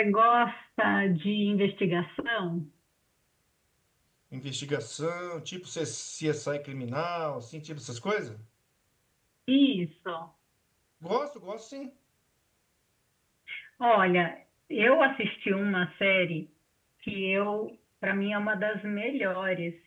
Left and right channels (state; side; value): identical; both; correlation 1.00